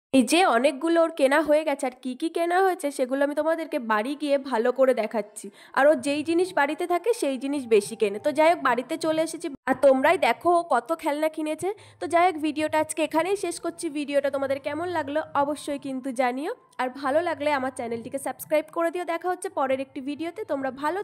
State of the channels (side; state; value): both; identical; correlation 1.00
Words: এই যে অনেকগুলো ওর কেনা হয়ে গেছে, আর কি কি কেনা হয়েছে সেগুলো আমি তোমাদেরকে বাড়ি গিয়ে ভালো করে দেখাচ্ছি। আর ও যেই জিনিস বাড়িতে থাকে সেই জিনিস বেশি কেনে। তো যাই হোক, বাড়িতে চলে এসেছি আর তোমরাই দেখো ও কত খেলনা কিনেছে। তো যাই হোক, ভিডিওটা আজকে এখানেই শেষ করছি। ভিডিওটা তোমাদের কেমন লাগলো অবশ্যই কিন্তু জানিও, আর ভালো লাগলে আমার চ্যানেলটিকে সাবস্ক্রাইব করে দিও। দেখা হচ্ছে পরের একটি ভিডিওতে। তোমরা ভালো